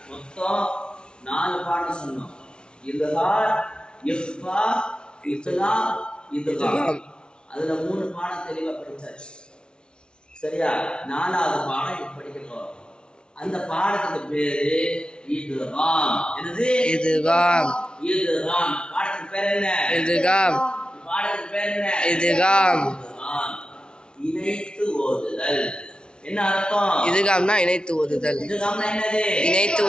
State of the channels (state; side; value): late; right; 0.055 ms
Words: மொத்தம் 4 பாடம் சொன்னோம். இல்ஹார், இஃபா, இத்லாம், இத்காம். அதுல 3 பாடம் தெளிவா படிச்சாச்சு. சரியா? 4வது பாடம் இப்ப படிக்க போறோம். அந்த பாடத்துக்கு பேரு இத்காம். என்னது? இத்காம். இத்காம். பாடத்துக்கு பேர் என்ன? இத்காம். பாடத்துக்கு பேர் என்ன? இத்காம். இணைத்து ஓதுதல். என்ன அர்த்தம்? இத்காம்னா இணைத்து ஓதுதல். இத்காம்னா என்னது? இணைத்து